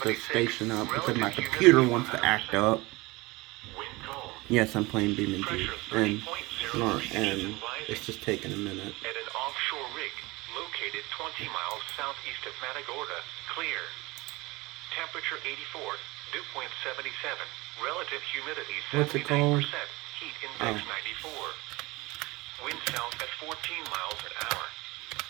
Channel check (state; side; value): quieter; left; 22.6 dB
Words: the station up because my computer wants to act up. Yes, I'm playing BeamNG, and it's just taking a minute. At an offshore rig located 20 miles southeast of Matagorda, clear. Temperature 84, dew point 77, relative humidity 79%, heat index 94. Wind south at 14 miles an hour.